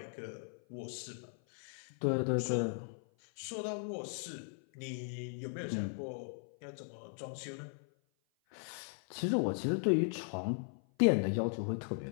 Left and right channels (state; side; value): silent; right; 53 dB below the other